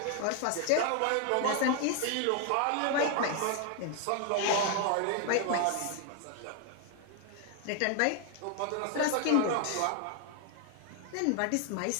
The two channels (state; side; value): different; both; correlation 0.01